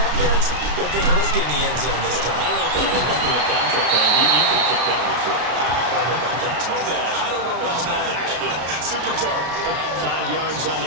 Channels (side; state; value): left; late; 33 ms